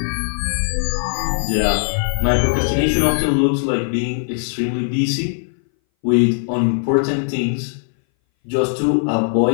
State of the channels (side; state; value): right; silent; 61 dB below the other